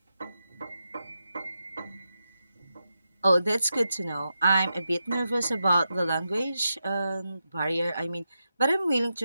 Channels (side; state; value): both; inverted; correlation -0.88